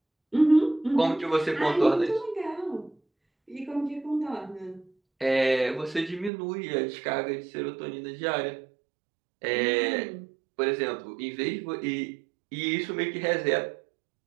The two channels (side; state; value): left; drops out; at 6.3 s